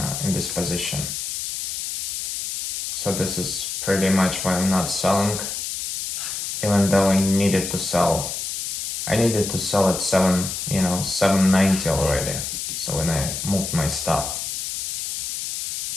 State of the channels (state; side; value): noise; left; hiss, 4 dB below the sound